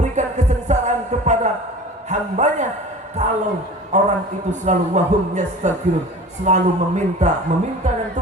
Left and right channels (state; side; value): normal; both; correlation 0.39